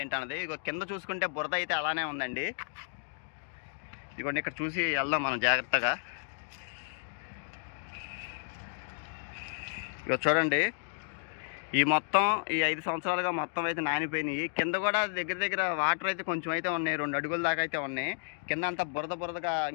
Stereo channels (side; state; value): right; silent; digital silence